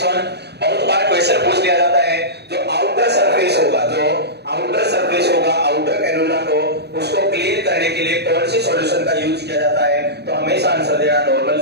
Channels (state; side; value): late; left; 0.48 ms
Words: वन, बहुत बार क्वेश्चन पूछ लिया जाता है, जो आउटर सरफेस होगा, आउटर कैनुला को उसको क्लीन करने के लिए कौन से सॉल्यूशन का यूज किया जाता है? तो हमेशा आंसर देना नॉर्मल